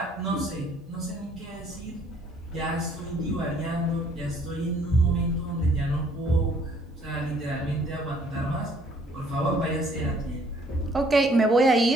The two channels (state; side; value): normal; both; correlation 0.61